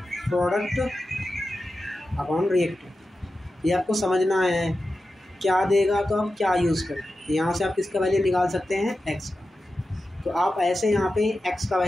product upon reactant. ये आपको समझना है क्या देगा तो आप क्या यूज़ करें। यहाँ से आप किसका वैल्यू निकाल सकते हैं, एक्स का। तो आप ऐसे यहाँ पे एक्स का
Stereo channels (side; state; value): both; normal; correlation 0.92